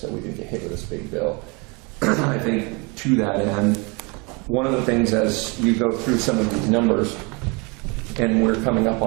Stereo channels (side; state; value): left; quieter; 29.8 dB